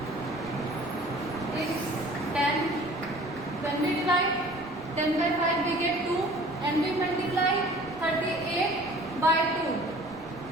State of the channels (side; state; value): right; noise; rumble, 21 dB below the sound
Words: is 10. When we divide 10 by 5 we get 2 and we multiply 38 by 2.